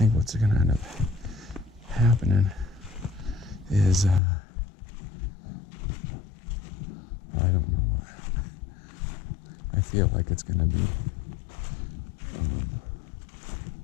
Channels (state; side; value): drops out; right; at 4.2 s